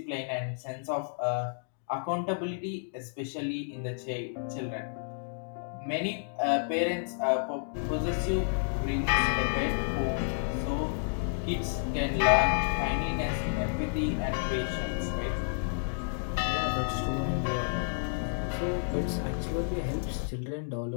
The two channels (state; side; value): silent; right; digital silence